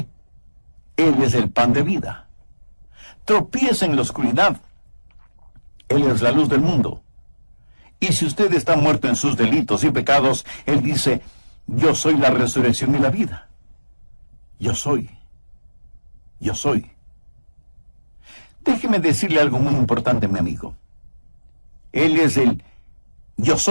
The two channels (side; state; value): both; inverted; correlation -1.00